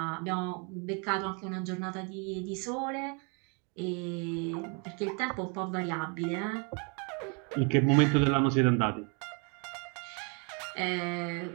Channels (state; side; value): quieter; left; 35.1 dB